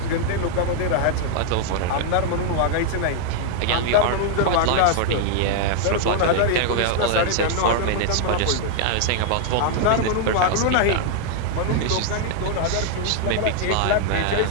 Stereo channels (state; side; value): different; both; correlation 0.00